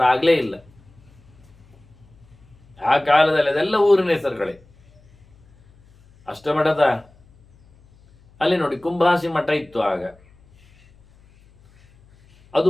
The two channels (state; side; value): noise; left; hum, 29 dB below the sound